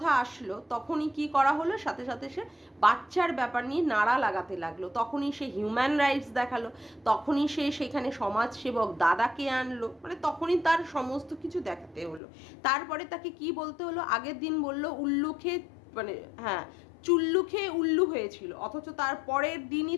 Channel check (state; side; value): drops out; right; at 12.2 s